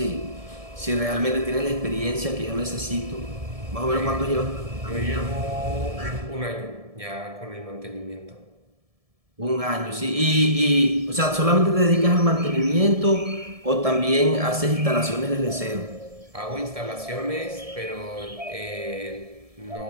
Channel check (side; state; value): left; late; 1.7 ms